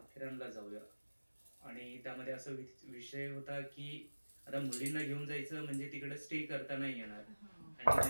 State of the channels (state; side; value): inverted; both; correlation -1.00